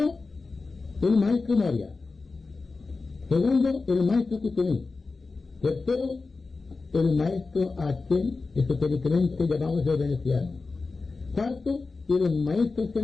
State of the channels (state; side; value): quieter; right; 4.0 dB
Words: el maestro Moria. Segundo, el maestro Kutumí. Tercero, el maestro aquel, esotéricamente llamado el veneciano. Cuarto, el maestro